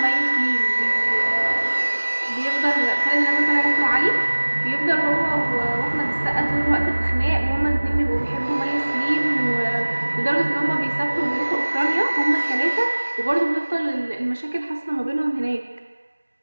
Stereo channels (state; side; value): inverted; both; correlation -1.00